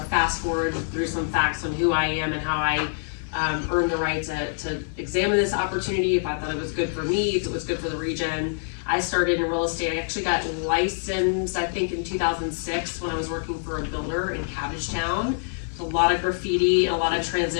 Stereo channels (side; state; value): right; silent; 58 dB below the other